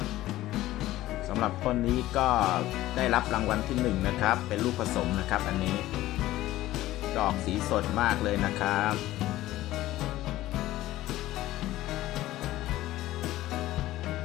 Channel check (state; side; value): quieter; right; 15.7 dB